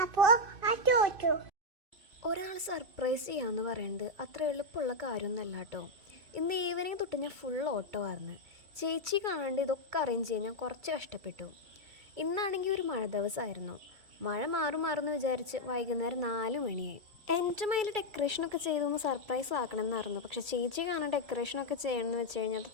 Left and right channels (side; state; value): left; late; 2.3 ms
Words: ഒരാൾ സർപ്രൈസ് ചെയ്യാമെന്ന് പറയുന്നത് അത്ര എളുപ്പമുള്ള കാര്യമൊന്നുമല്ല കേട്ടോ. ഇന്ന് ഈവനിങ് തൊട്ട് ഞാൻ ഫുൾ ഓട്ടോ ആയിരുന്നു. ചേച്ചി കാണാണ്ട് ഇതൊക്കെ അറേഞ്ച് ചെയ്യാൻ ഞാൻ കുറച്ച് കഷ്ടപ്പെട്ടു. ഇന്നാണെങ്കിൽ ഒരു മഴ ദിവസമായിരുന്നു. മഴ മാറുമെന്ന് വിചാരിച്ച് വൈകുന്നേരം 4 മണിയായി. എൻ്റെ മൈൽ ഡെക്കറേഷനൊക്കെ ചെയ്തൊന്ന് സർപ്രൈസ് ആക്കണമെന്നായിരുന്നു. പക്ഷേ ചേച്ചി കാണാൻ ഡെക്കറേഷനൊക്കെ ചെയ്യണമെന്ന് വെച്ച് കഴിഞ്ഞാൽ അത്